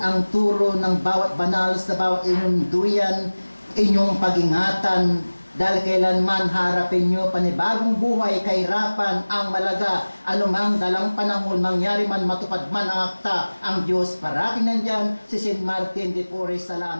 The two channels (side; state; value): both; inverted; correlation -1.00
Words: turo ng bawat banal sa bawat inyong duyan, inyong pag-ingatan, dahil kailanman harapin nyo panibagong buhay, kahirapan, ang malaga, anumang dalang panahon, mangyari man, matupad man ang akta, ang Diyos parating nandyan, si St. Martin de Porres,